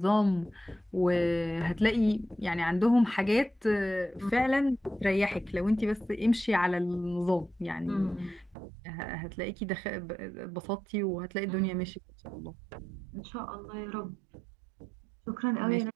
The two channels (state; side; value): drops out; left; at 8.6 s